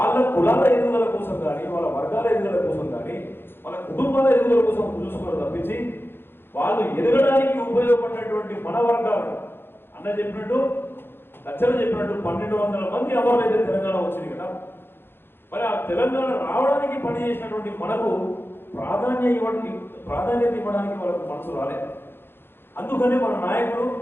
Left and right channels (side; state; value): right; late; 0.10 ms